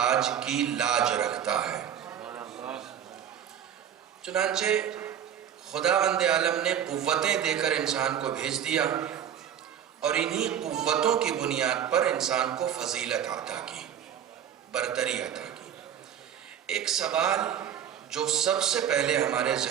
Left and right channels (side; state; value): left; quieter; 9.3 dB